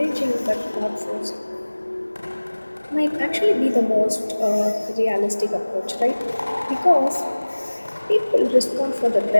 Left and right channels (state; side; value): inverted; both; correlation -1.00